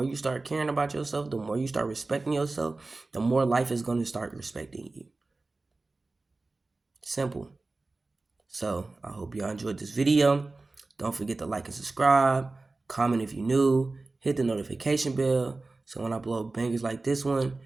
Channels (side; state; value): left; quieter; 3.4 dB